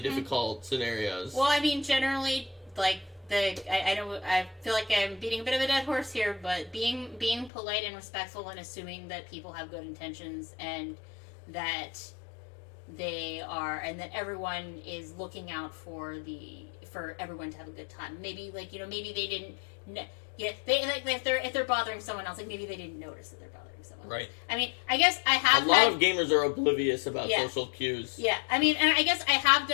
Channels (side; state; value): right; drops out; at 7.5 s